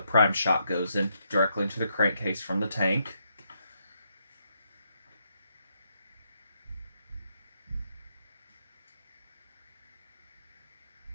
prime shot goes in, directly into the crankcase from the tank.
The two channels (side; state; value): both; inverted; correlation -0.78